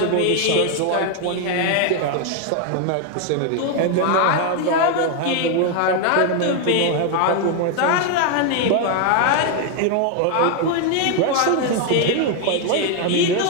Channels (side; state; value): both; different; correlation 0.01